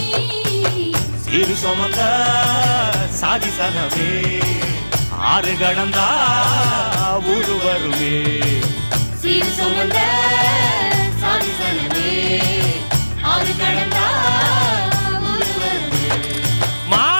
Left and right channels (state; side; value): inverted; both; correlation -1.00